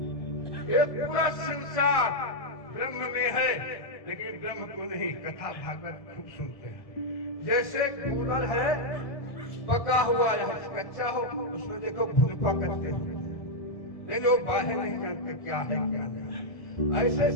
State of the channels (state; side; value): late; right; 1.7 ms